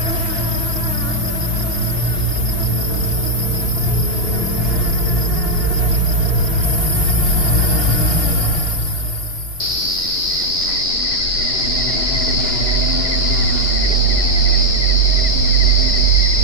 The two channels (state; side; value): late; right; 2.8 ms